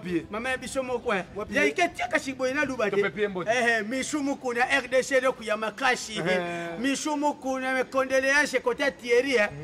mama na biso mo kwa ya iketi akashiboye na luba de mishumu kuna RDC le kuyama kashi mishumu kuna me condoléances côté Thierry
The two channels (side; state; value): both; identical; correlation 1.00